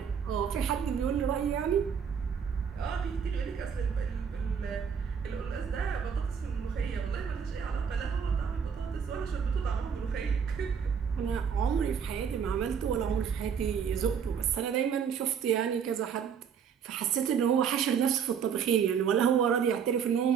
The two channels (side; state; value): left; quieter; 7.2 dB